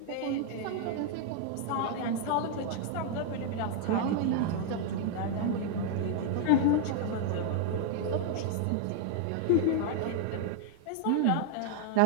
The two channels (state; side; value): different; both; correlation 0.00